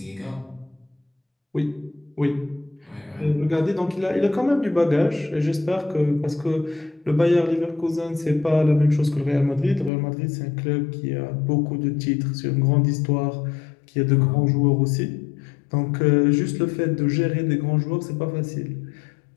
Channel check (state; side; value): drops out; right; at 9.9 s